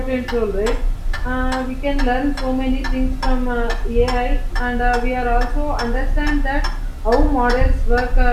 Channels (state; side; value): identical; both; correlation 1.00